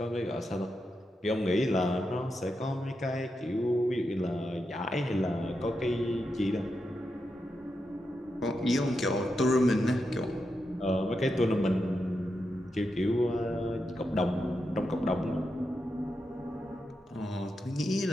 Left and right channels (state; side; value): normal; both; correlation 0.86